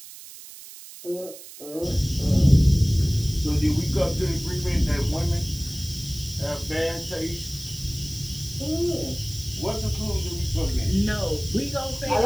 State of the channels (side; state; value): right; noise; hiss, 16 dB below the sound